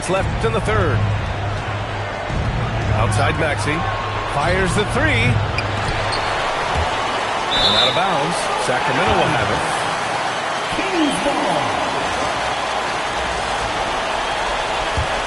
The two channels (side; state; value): both; identical; correlation 1.00